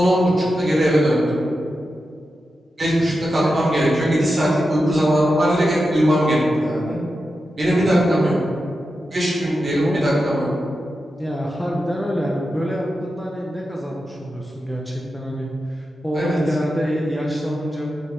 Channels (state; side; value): normal; both; correlation 0.90